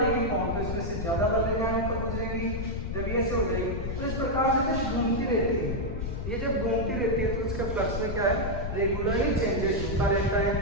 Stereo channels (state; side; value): noise; left; rumble, 4 dB below the sound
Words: लेगी कौन, तो इसमें से ज्यादा बल रेखा होकर गुजरेगी, जब ये ऐसे हो जाएगी, तो इस प्रकार से घूमती रहती है। ये जब घूमती रहती है तो इसके फ्लक्स में क्या है, रेगुलरली चेंजेस होता रहता है,